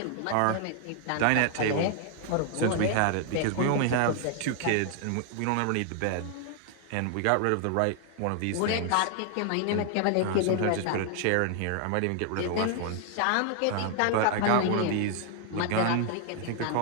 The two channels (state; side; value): different; both; correlation 0.00